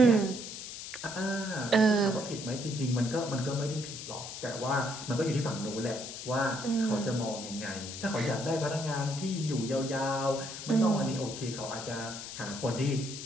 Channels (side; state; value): left; noise; hiss, 9 dB below the sound